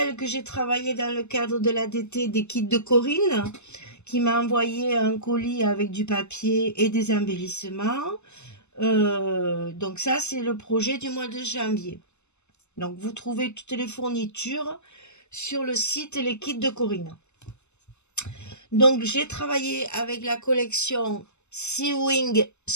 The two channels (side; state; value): right; late; 0.82 ms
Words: que j'ai travaillé dans le cadre de l'ADT des kits de Corinne, qui m'a envoyé un colis avec du papier et des embellissements. Donc, ça, c'est le projet du mois de janvier. Donc, vous trouvez toutes les fournitures sur le site Les Kits de Corinne. Donc, j'ai travaillé avec la collection Sewing